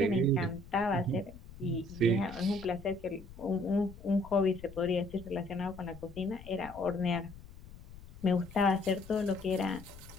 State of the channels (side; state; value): left; noise; rumble, 17 dB below the sound